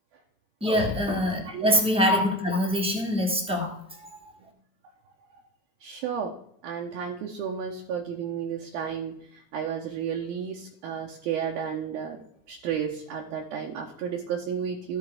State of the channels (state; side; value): normal; both; correlation 0.24